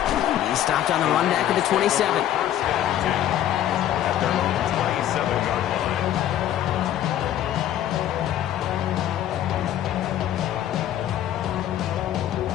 He stopped on the run back at the 27. At their own 27-yard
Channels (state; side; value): quieter; right; 11.6 dB